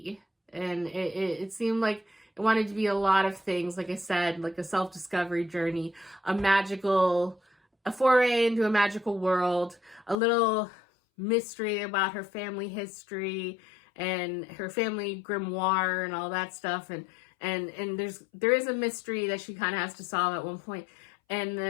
And it seemed like it wanted to be a lot of things, like I said, like a self-discovery journey, a foray into a magical world, a little mystery about her family history and her family grimoire and all that stuff. And there is a mystery that she kind of has to solve at one point. And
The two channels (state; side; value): drops out; right; at 10.2 s